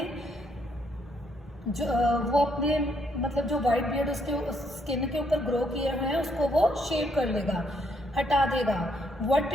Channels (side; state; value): both; normal; correlation 0.71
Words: मतलब जो वाइट बियर्ड उसके स्किन के ऊपर ग्रो किए हुए हैं उसको वो शेव कर लेगा, हटा देगा. What